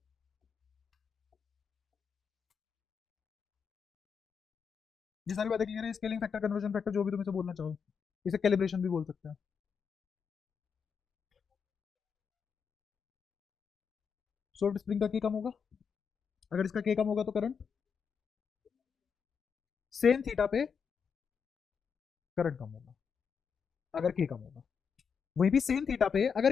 ये सारी बातें क्लियर है। स्केलिंग फैक्टर, कन्वर्जन फैक्टर, जो भी तुम इसे बोलना चाहो, इसे कैलिब्रेशन भी बोल सकते हैं। सॉफ्ट स्प्रिंग का के कम होगा। अगर इसका के कम होगा तो करंट सेम थीटा पे करंट कम होगा, अगर के कम होगा। वही भी सेम थीटा पे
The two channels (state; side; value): quieter; right; 6.4 dB